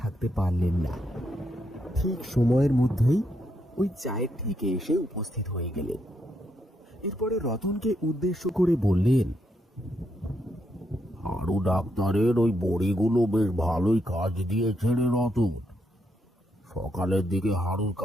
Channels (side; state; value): both; normal; correlation 0.79